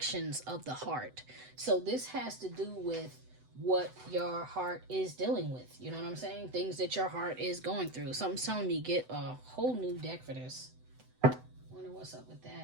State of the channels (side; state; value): left; late; 7.9 ms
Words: of the Heart. So, this has to do with what your heart is dealing with. You know what I'm saying? Things that your heart is going through. Something's telling me get a whole new deck for this. Wonder what's up with